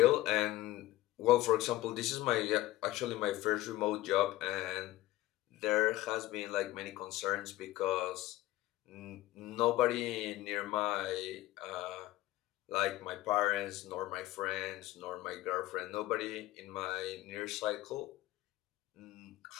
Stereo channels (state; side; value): quieter; right; 16.5 dB